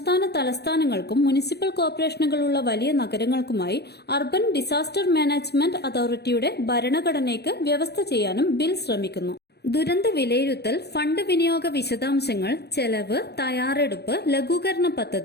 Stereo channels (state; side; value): late; right; 0.48 ms